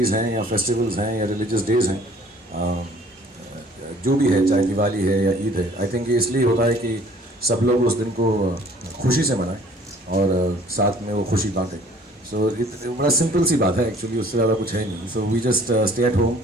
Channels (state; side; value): normal; both; correlation 0.54